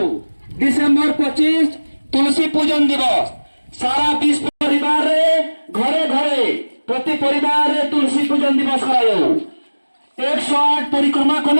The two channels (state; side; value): inverted; both; correlation -1.00